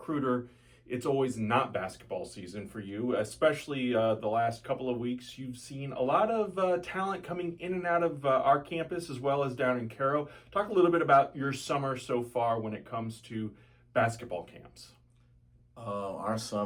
it's always not basketball season for you, especially the last couple of weeks. You've seen a lot of talent coming in and out of our campus as well as down in Cairo. Talk a little bit about your summer so far when it comes to basketball camps. Our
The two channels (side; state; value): both; identical; correlation 1.00